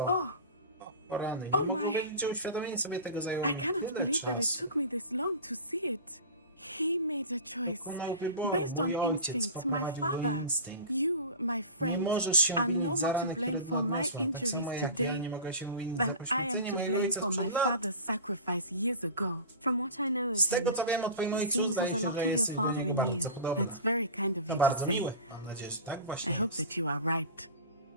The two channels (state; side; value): inverted; both; correlation -0.33